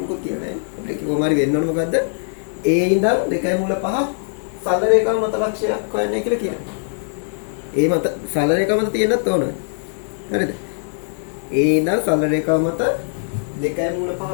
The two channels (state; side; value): silent; right; digital silence